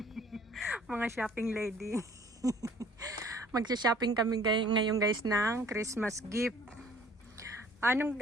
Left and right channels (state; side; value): normal; both; correlation 0.54